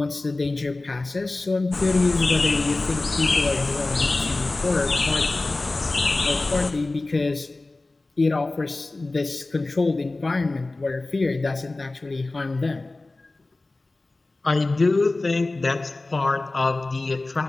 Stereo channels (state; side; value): quieter; right; 3.1 dB